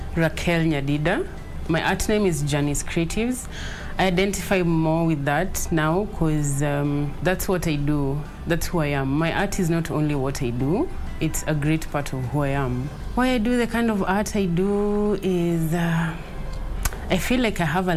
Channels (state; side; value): identical; both; correlation 1.00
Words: Raquel Nyadida. My art name is Janice Creatives. I identify more with that now because that's what I do. That's who I am. My art is not only what I do, it's a great part of who I am. Why I do the kind of art I do is I feel like I have a